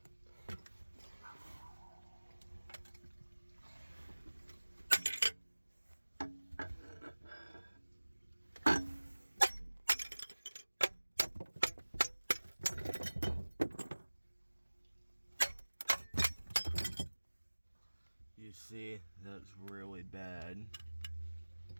You see, that's really bad.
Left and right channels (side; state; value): both; inverted; correlation -1.00